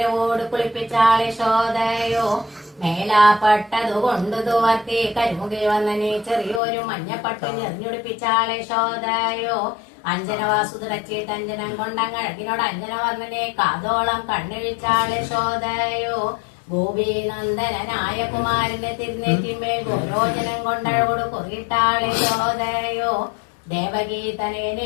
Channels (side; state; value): right; drops out; at 6.6 s